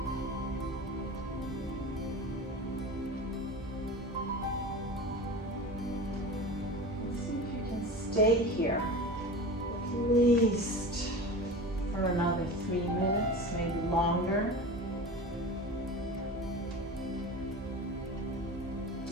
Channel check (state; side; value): normal; both; correlation 0.32